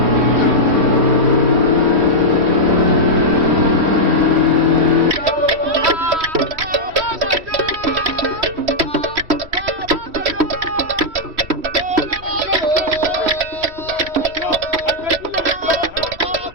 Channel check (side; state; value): left; late; 3.1 ms